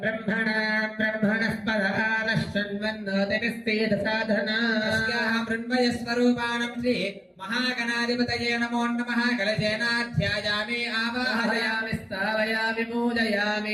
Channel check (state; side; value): identical; both; correlation 1.00